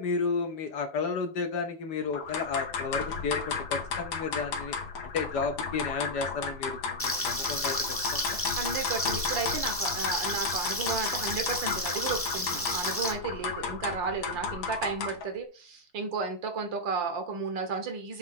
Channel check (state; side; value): normal; both; correlation -0.04